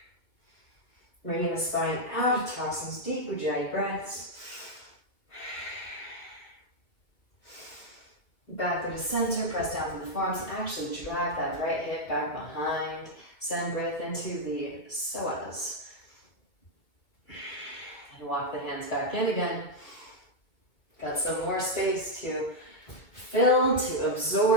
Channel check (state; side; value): late; right; 2.0 ms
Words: Bringing the spine out of tossings, deep Ujjayi breaths. Back through the center, press down through the forearms, and actually drag that right hip back behind. Send breath into the psoas. And walk the hands back in again. Got some more space to fill, to